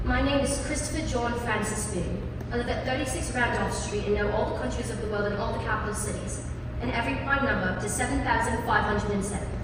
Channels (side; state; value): both; identical; correlation 1.00